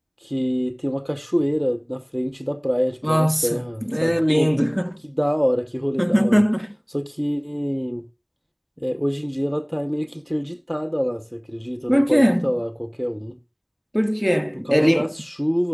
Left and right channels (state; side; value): identical; both; correlation 1.00